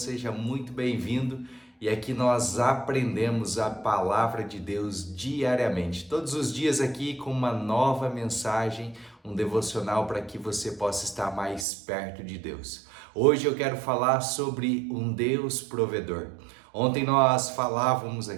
muito bem-vindo. E aqui nós aprendemos a palavra de Deus diariamente, todos os dias aqui com uma nova mensagem, um devocional para que você possa estar mais perto de Deus. Hoje eu quero falar sobre um Deus provedor. Ontem nós falávamos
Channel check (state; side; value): drops out; left; at 11.7 s